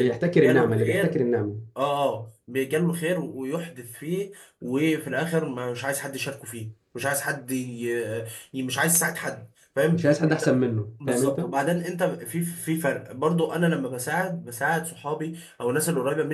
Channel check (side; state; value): both; identical; correlation 1.00